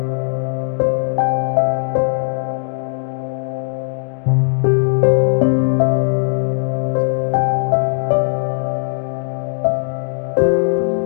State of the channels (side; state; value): right; silent; 67 dB below the other